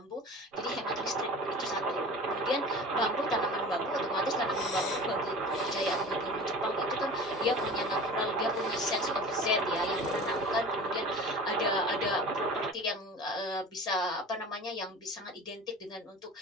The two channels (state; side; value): normal; both; correlation 0.37